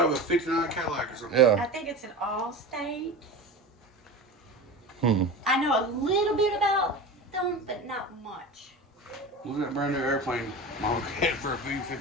a Allstate. 59 Cadillac or something. Yeah. I think it's an Allstate. Hmm. I know a little bit about them, but not much. Look at that brand new airplane model kit for a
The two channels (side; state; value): both; normal; correlation 0.30